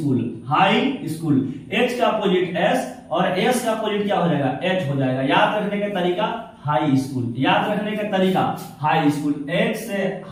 high school. H का अपोजिट एस और एस का अपोजिट क्या हो जाएगा, एच हो जाएगा। याद रखने का तरीका हाई स्कूल, याद रखने का तरीका हाई स्कूल। एच से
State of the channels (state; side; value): identical; both; correlation 1.00